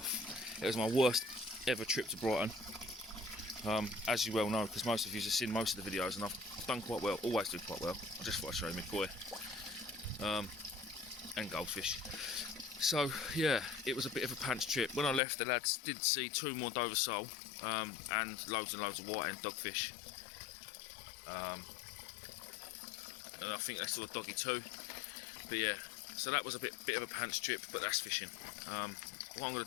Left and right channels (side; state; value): right; drops out; at 15.2 s